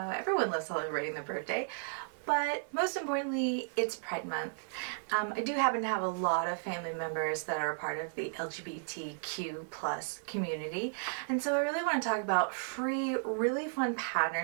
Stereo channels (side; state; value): left; silent; 55 dB below the other